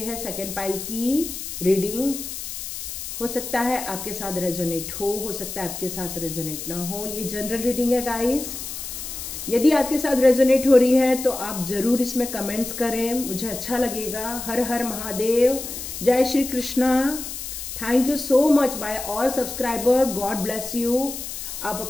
सेकेंड पाइल की रीडिंग। हो सकता है आपके साथ रेजोनेट हो सकता है आपके साथ रेजोनेट ना हो। ये जनरल रीडिंग है गाइस। यदि आपके साथ रेजोनेट हो रही है तो आप जरूर इसमें कमेंट्स करें, मुझे अच्छा लगेगा। हर हर महादेव, जय Shri Krishna. Thank you so much bye all subscriber, God bless you. आप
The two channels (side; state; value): left; noise; hiss, 8 dB below the sound